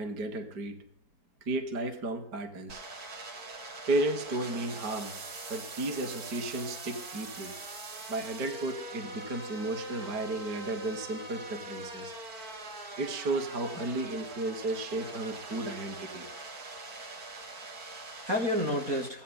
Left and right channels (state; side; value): late; left; 4.5 ms